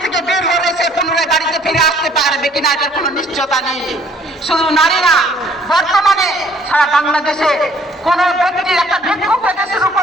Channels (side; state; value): both; normal; correlation 0.60